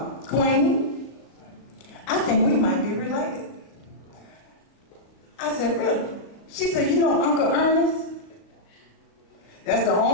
Queen, I think we might be related. I said, really? She said, you know Uncle Ernest? That's the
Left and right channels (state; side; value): late; right; 38 ms